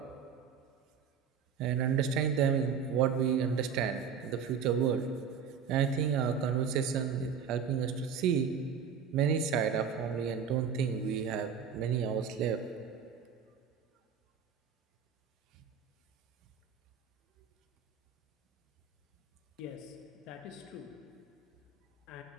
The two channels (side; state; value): left; quieter; 6.8 dB